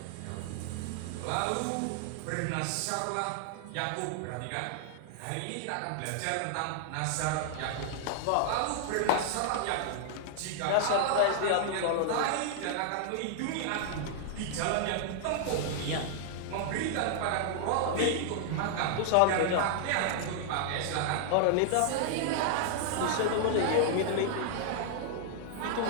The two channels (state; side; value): different; both; correlation 0.00